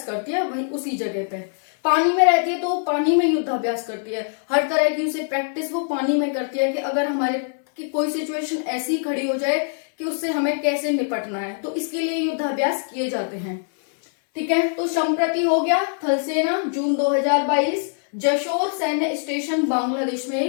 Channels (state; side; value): silent; right; 64 dB below the other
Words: करती है, वही उसी जगह पे। पानी में रहती है तो पानी में युद्धाभ्यास करती है, हर तरह की उसे प्रैक्टिस वो पानी में करती है कि अगर हमारे की कोई सिचुएशन ऐसी खड़ी हो जाए कि उससे हमें कैसे निपटना है, तो इसके लिए युद्धाभ्यास किए जाते हैं। ठीक है, तो संप्रति हो गया थल सेना जून 2022 जशोर सैन्य स्टेशन बांग्लादेश